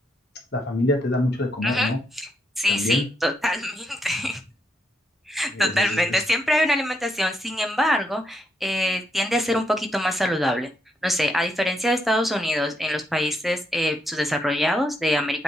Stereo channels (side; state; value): both; normal; correlation 0.77